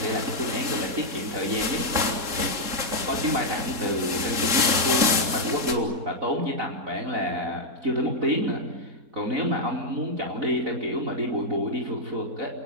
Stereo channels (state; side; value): late; left; 4.1 ms